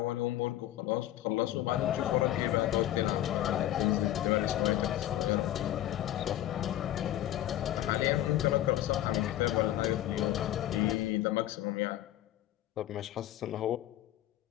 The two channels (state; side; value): quieter; right; 13.4 dB